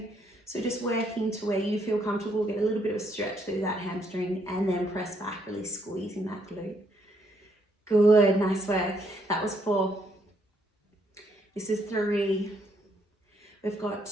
So just working to where you feel comfortable, get a little bit of a stretch through that hamstring and then press back, really squeezing that glute. Good, nice work. That was 4. This is 3. We've got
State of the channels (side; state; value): both; normal; correlation 0.72